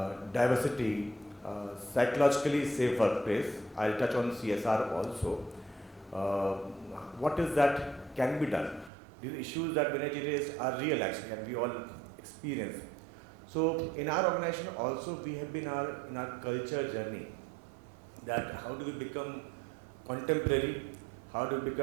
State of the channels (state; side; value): drops out; left; at 8.9 s